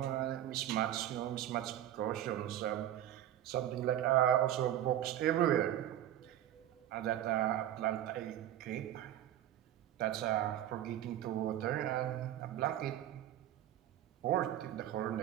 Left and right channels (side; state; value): left; quieter; 12.1 dB